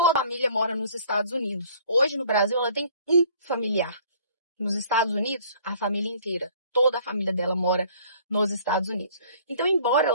a família mora nos Estados Unidos. Hoje, no Brasil, ela tem um familiar. Nos Estados Unidos, a família inteira. Toda a família dela mora nos Estados Unidos. Então, embora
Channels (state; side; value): inverted; both; correlation -0.55